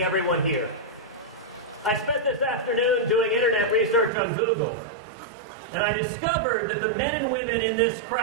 everyone here. I spent this afternoon doing internet research on Google, and I discovered that the men and women in this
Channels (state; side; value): drops out; left; at 4.1 s